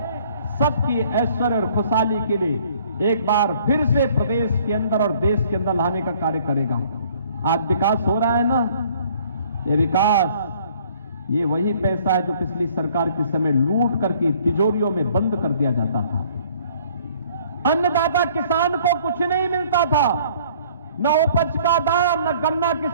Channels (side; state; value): both; inverted; correlation -0.58